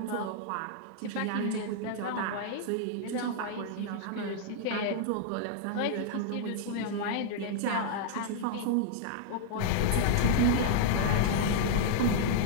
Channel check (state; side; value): different; both; correlation -0.01